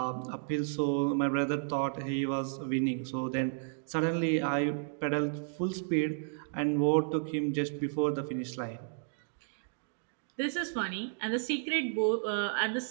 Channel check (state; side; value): silent; left; digital silence